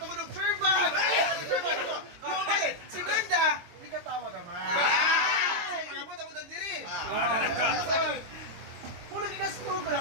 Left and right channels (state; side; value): late; left; 23 ms